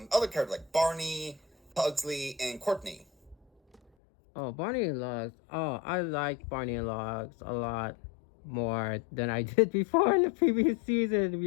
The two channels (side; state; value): right; drops out; at 3.8 s